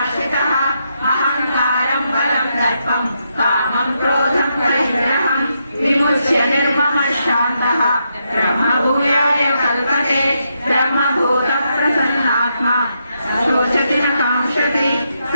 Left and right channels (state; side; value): inverted; both; correlation -0.81